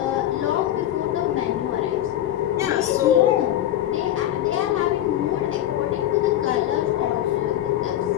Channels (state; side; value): quieter; right; 12.5 dB